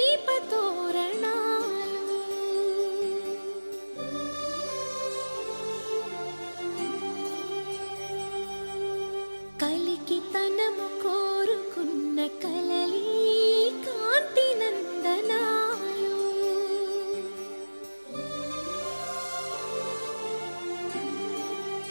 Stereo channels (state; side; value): inverted; both; correlation -1.00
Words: కలికి తనము కోరుకున్న కలలి కాంతి నందనాలు.